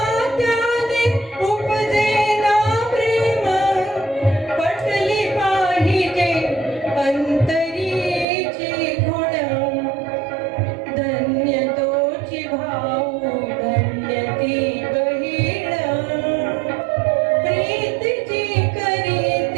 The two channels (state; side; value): drops out; left; at 8.2 s